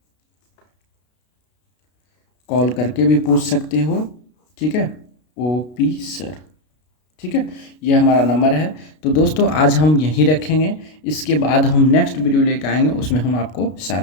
कॉल करके भी पूछ सकते हो। ठीक है, ओपी सर। ठीक है, ये हमारा नंबर है। तो दोस्तों, आज हम यहीं रखेंगे। इसके बाद हम नेक्स्ट वीडियो लेकर आएंगे, उसमें हम आपको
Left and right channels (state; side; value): late; right; 33 ms